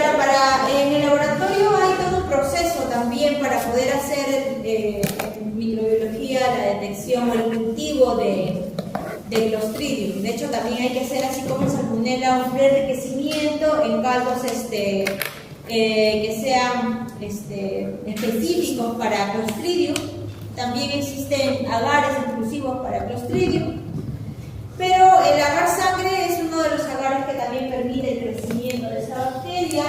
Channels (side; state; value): both; identical; correlation 1.00